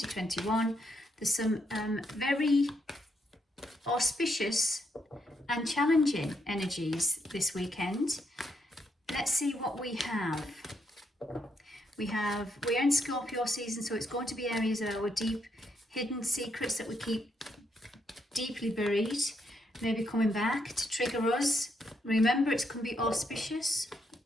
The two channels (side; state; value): both; normal; correlation 0.77